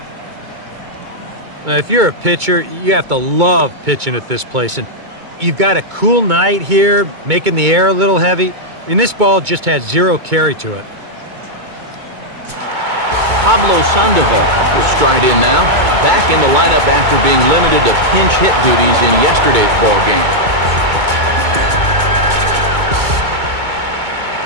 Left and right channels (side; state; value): left; late; 2.2 ms